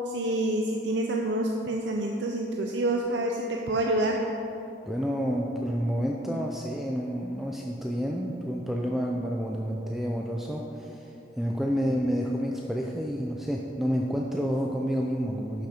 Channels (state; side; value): normal; both; correlation 0.65